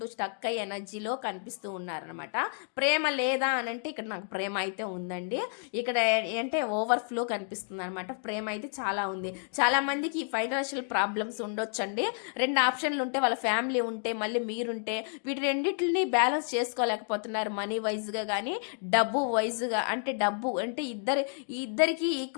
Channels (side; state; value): right; silent; 55 dB below the other